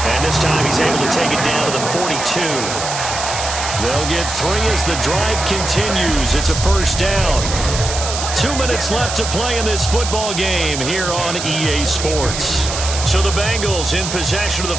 And this time he's able to take it down to the 42. They'll get 3 as the drive continues. It's a 1st down. 2 minutes left to play in this football game here on EA Sports. So the Bengals in possession of the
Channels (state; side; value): noise; right; hiss, 5 dB below the sound